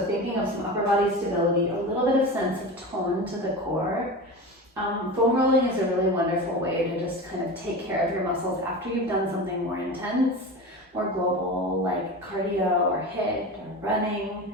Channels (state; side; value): normal; both; correlation 0.28